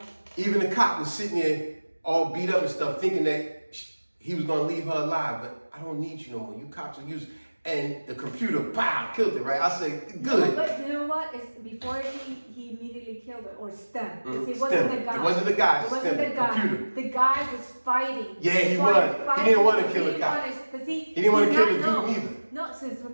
even the cop was sitting there all beat up and stuff, thinking that he was gonna leave her alive. But I don't need you no more. You cops are used. And the computer, pow, killed it, right? I say, good. No, but you know what? It's before he immediately killed her, or STEM. It wasn't STEM. the guy. It wasn't the guy. It wasn't STEM, the guy. computer. The guy was fighting. Yeah, he was. He didn't want to kill the cop. He didn't want to kill the dude either. No, since the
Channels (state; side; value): inverted; both; correlation -1.00